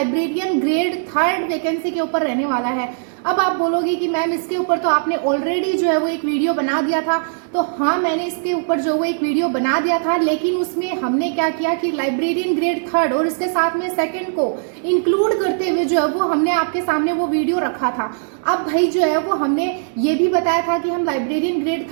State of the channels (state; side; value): silent; left; digital silence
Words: ग्रेड 3 वैकेंसी के ऊपर रहने वाला है। अब आप बोलोगे कि मैम इसके ऊपर तो आपने ऑलरेडी जो है वो एक वीडियो बना दिया था। तो हाँ, मैंने इसके ऊपर जो वो एक वीडियो बना दिया था, लेकिन उसमें हमने क्या किया कि लाइब्रेरियन ग्रेड 3 और इसके साथ में सेकंड को इंक्लूड करते हुए जो है वो हमने आपके सामने वो वीडियो रखा था। अब भाई जो है वो हमने ये भी बताया था कि हम लाइब्रेरियन ग्रेड